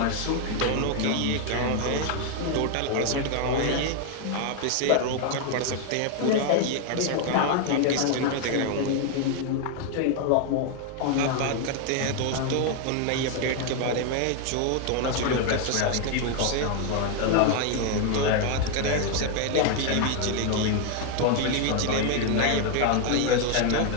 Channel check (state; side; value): different; both; correlation 0.01